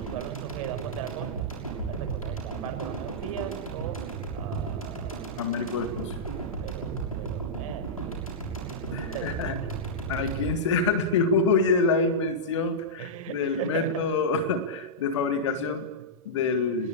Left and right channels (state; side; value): normal; both; correlation -0.11